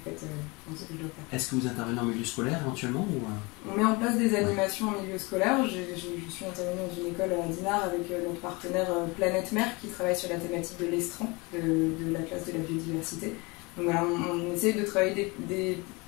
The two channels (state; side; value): quieter; right; 26.5 dB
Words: fait dans ce que je dois faire. Est-ce que vous intervenez en milieu scolaire éventuellement ou... On met en place des animations en milieu scolaire. Je suis intervenue dans une école à Dinard avec notre partenaire Planète Mer qui travaille sur la thématique de l'estran, de la classe de la biodiversité. Donc voilà, on essaye de travailler des